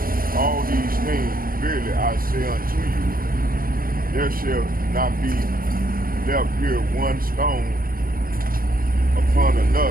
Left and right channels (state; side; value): late; left; 0.41 ms